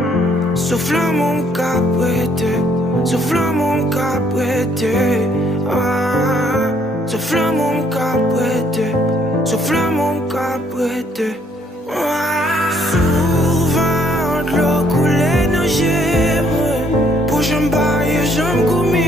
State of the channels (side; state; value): both; normal; correlation 0.67